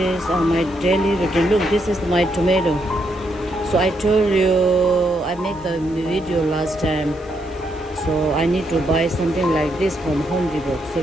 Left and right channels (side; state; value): right; noise; hiss, 29 dB below the sound